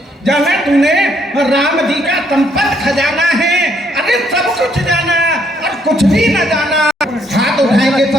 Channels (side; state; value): both; normal; correlation 0.70